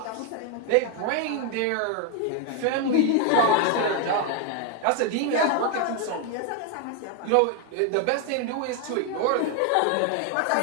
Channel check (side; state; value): both; different; correlation 0.01